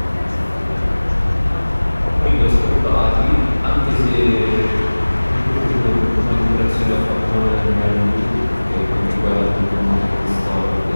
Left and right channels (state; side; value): inverted; both; correlation -1.00